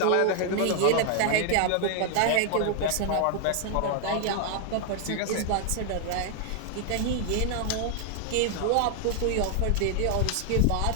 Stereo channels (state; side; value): different; both; correlation 0.00